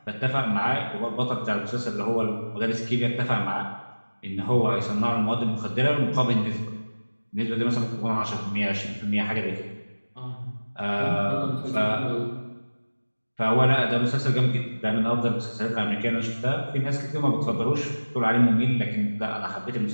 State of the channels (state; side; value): inverted; both; correlation -1.00